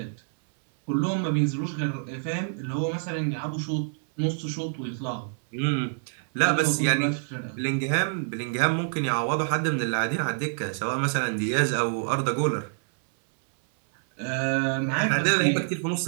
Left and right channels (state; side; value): silent; left; 60 dB below the other